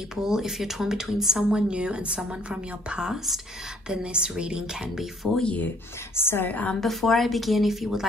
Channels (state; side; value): normal; both; correlation 0.63